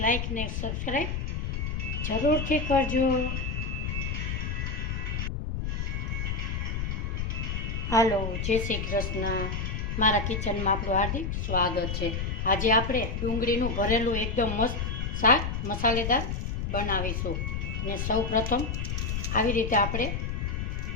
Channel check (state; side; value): noise; left; rumble, 2 dB below the sound